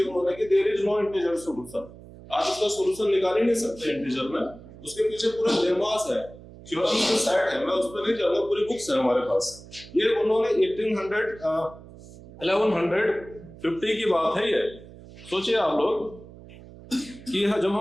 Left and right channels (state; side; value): noise; right; hum, 18 dB below the sound